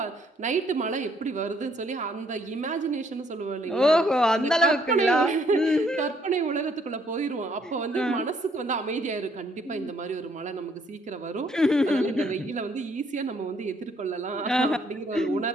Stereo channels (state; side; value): normal; both; correlation 0.67